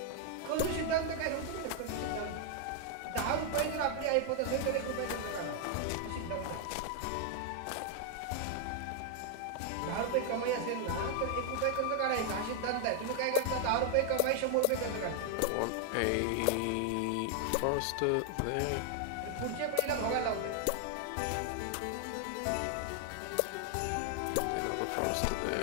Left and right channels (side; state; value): both; different; correlation 0.00